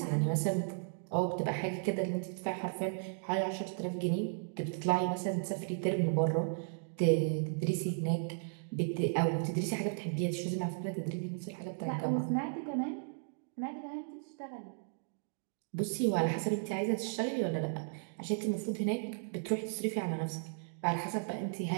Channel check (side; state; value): left; silent; digital silence